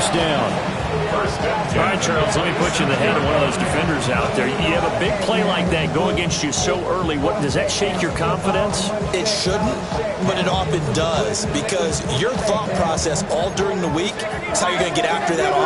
down. All right, Charles, let me put you in the head of one of those defenders out there. You have a big play like that go against you so early. What does that shake your confidence? It shouldn't, but it often does, because your thought process all during the week is how you're going to get after that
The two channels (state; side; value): identical; both; correlation 1.00